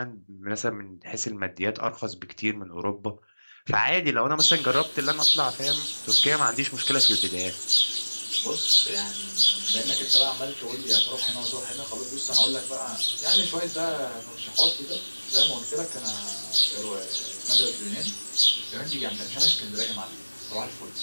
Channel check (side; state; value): both; inverted; correlation -1.00